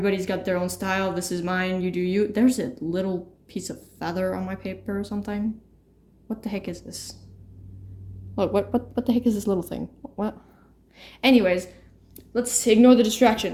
got their own style. This is mine, you do you. There's a little piece of feather on my paper or something. What the heck is this? Look, what the heck is this little thing? What? Anyways, let's ignore the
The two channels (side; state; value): both; identical; correlation 1.00